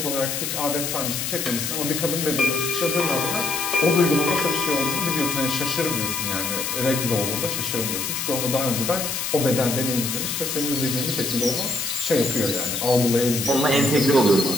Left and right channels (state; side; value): noise; left; hiss, 2 dB below the sound